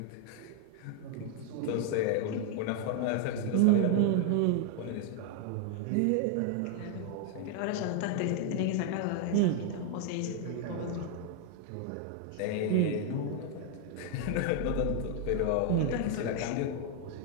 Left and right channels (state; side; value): different; both; correlation 0.00